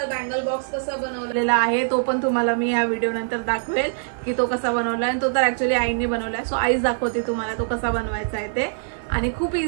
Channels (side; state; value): left; silent; digital silence